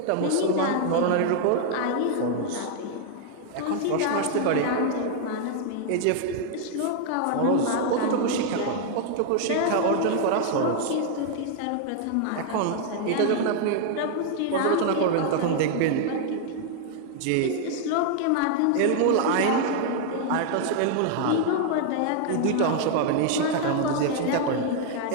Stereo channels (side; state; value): both; different; correlation 0.00